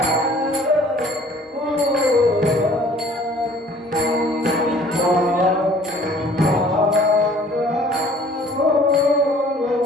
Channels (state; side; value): normal; both; correlation 0.53